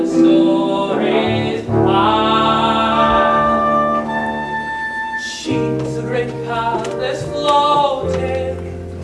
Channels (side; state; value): both; identical; correlation 1.00